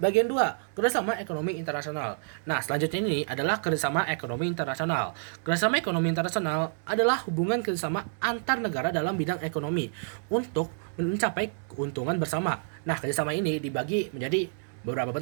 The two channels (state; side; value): silent; left; digital silence